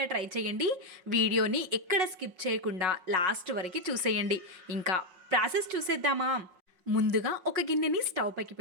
ట్రై చేయండి. వీడియోని ఎక్కడ స్కిప్ చేయకుండా లాస్ట్ వరకు చూసేయండి. ఇంకా ప్రాసెస్ చూసేద్దామా? ముందుగా ఒక గిన్నెని స్టవ్ పైకి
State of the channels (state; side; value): late; left; 5.5 ms